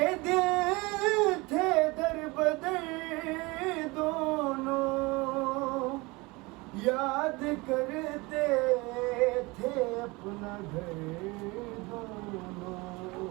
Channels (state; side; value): quieter; left; 24.4 dB